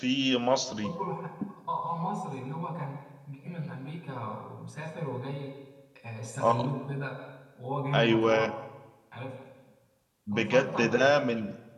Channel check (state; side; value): identical; both; correlation 1.00